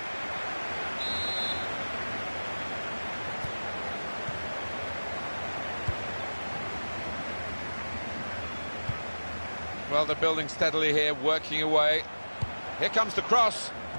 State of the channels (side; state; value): both; inverted; correlation -1.00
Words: Well, they're building steadily here, working away. Here comes the cross.